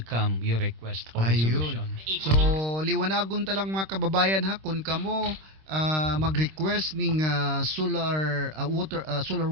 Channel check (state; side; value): late; left; 26 ms